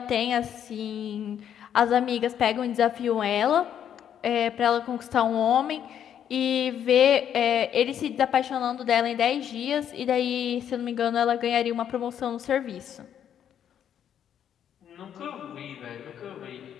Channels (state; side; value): quieter; right; 9.4 dB